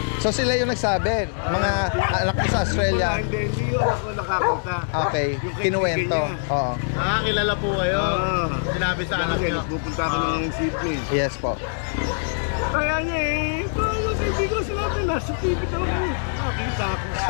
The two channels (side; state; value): right; silent; digital silence